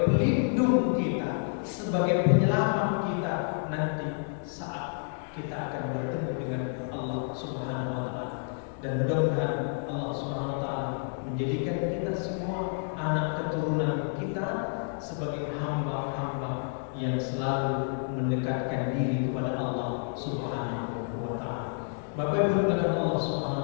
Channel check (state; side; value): silent; right; 58 dB below the other